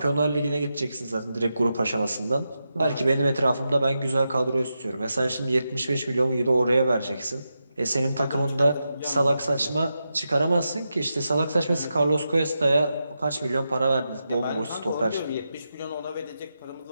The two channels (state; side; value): inverted; both; correlation -0.88